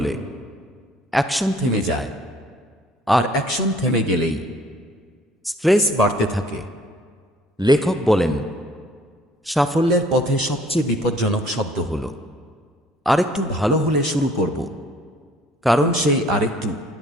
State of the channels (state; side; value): normal; both; correlation 0.57